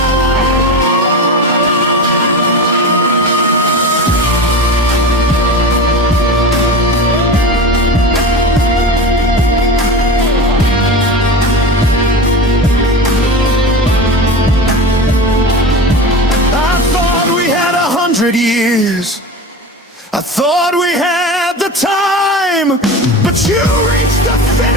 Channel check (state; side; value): normal; both; correlation 0.28